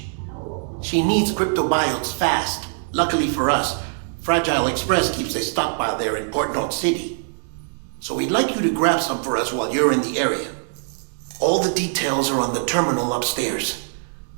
She needs cryptobiotes fast. Luckily for us, Fragile Express keeps a stockpile there in Port North City. So we'd like you to grab some for us while you're in the area. All the details are on the terminal upstairs.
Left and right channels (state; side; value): silent; left; digital silence